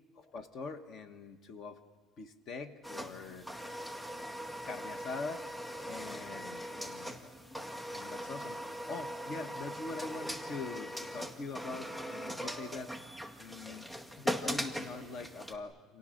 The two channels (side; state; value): both; normal; correlation 0.81